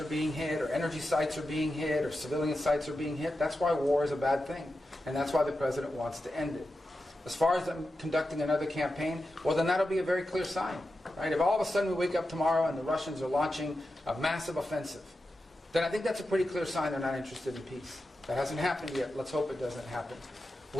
being hit, or energy sites are being hit, or civilian sites are being hit, that's why war is a bad thing. And that's why the president wants to end it. As far as them conducting another campaign, well, then that'll be a very clear sign. Right? If all of a sudden we wake up tomorrow and the Russians are launching a massive offensive, then I think that's a pretty clear sign they're not interested in peace. That hasn't happened yet. Let's hope it doesn't happen.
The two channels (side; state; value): both; normal; correlation 0.90